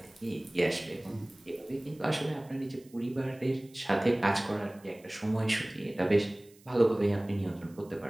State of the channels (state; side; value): noise; right; hiss, 27 dB below the sound